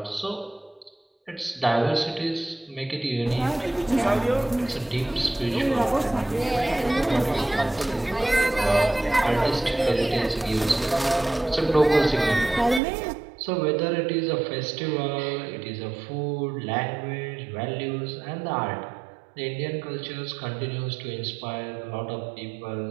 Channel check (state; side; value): drops out; left; at 12.8 s